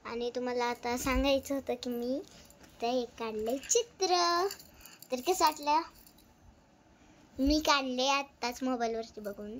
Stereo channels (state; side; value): identical; both; correlation 1.00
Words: आणि तुम्हाला आता सांगायचं होतं की मी ते एक काढले चित्र. तर कसं वाटलं? मी काढले आत्ताच मोबाईलवरती बघून,